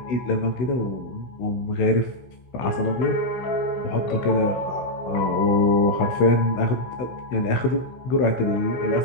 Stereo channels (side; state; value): right; late; 16 ms